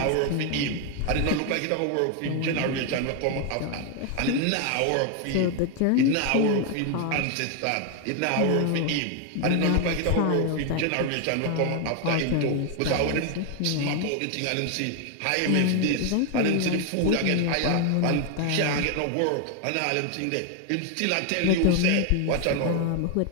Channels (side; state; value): both; different; correlation 0.01